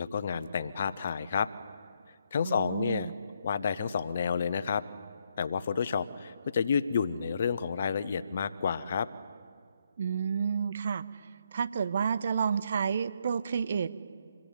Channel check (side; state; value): both; inverted; correlation -0.75